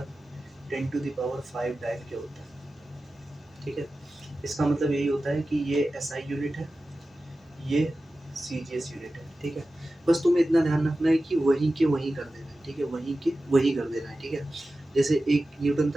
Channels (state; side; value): normal; both; correlation 0.94